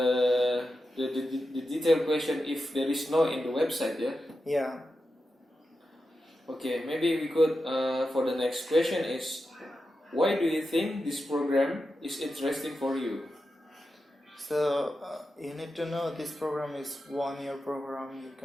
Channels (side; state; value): both; normal; correlation 0.90